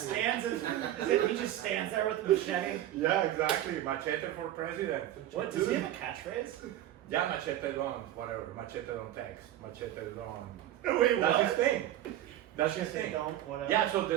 he just stands there with the machete. Yeah, exactly. Machete for president. What, does he have a catchphrase? Yeah, machete don't, whatever. Machete don't text. Machete don't. Wait, That's his thing. That's his They thing. don't, whatever. Yeah, so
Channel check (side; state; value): left; quieter; 13.0 dB